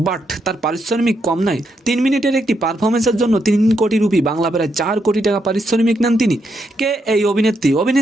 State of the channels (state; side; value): normal; both; correlation 0.80